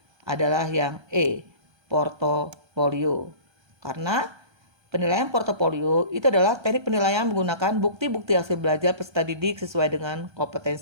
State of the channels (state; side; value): late; left; 1.3 ms